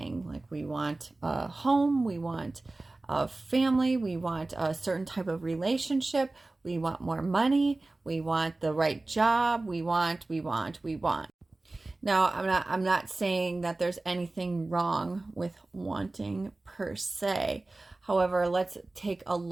Like, we want a home, we want a family, we want a certain type of relationship, we want more money, we want the right job, we want. Now, I'm not saying that there's anything wrong with wanting per se. However, let's take a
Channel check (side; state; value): left; quieter; 3.1 dB